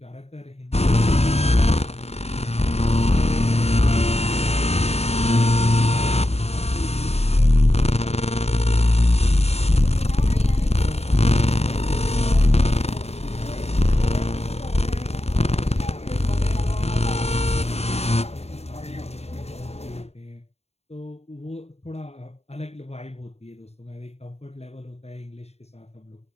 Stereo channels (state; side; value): late; right; 0.30 ms